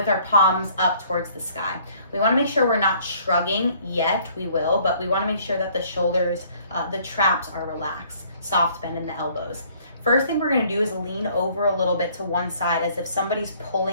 our palms up towards the sky. We want to make sure we're not shrugging yet. We will, but we want to make sure that the shoulders, the traps are relaxed. Soft bend in the elbows. First thing we're going to do is lean over a little bit to one side as if somebody's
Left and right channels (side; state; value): both; inverted; correlation -0.59